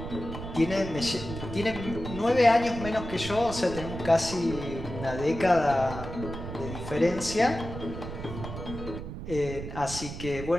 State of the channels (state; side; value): noise; right; rumble, 8 dB below the sound